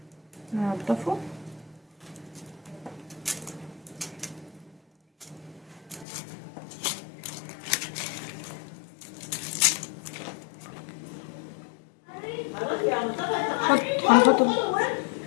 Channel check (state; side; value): drops out; right; at 6.1 s